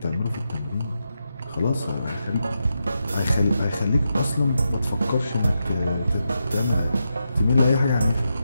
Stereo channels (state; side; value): inverted; both; correlation -0.86